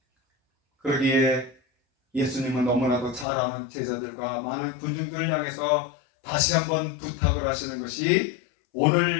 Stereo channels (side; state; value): right; drops out; at 3.2 s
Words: 그러기에 예수님은 너무나도 잘 아는 제자들과 많은 군중들을 향해서 다시 한번 부탁을 하시는 것이